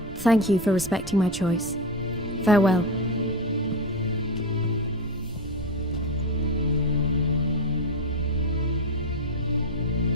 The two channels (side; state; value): right; noise; rumble, 14 dB below the sound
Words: Thank you for respecting my choice. Farewell.